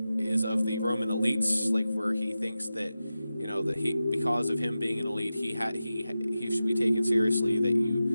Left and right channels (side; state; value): both; inverted; correlation -0.93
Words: is of the Roman elites, like where he thinks that, you know, that because of him being an elite, he should be taken seriously, that